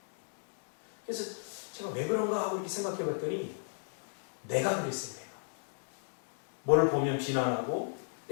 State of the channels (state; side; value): silent; right; digital silence